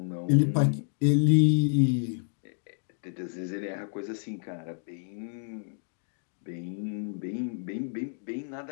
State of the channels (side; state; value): right; silent; digital silence